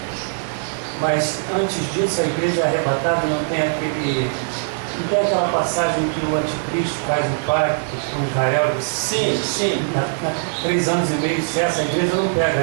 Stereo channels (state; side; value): silent; left; digital silence